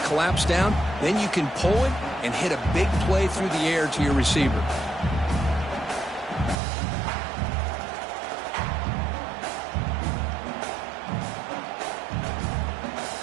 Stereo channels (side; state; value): left; drops out; at 6.6 s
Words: collapse down. Then you can pull it and hit a big play through the air to your receiver.